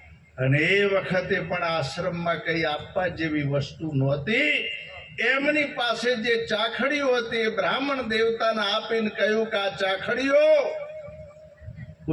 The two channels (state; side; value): identical; both; correlation 1.00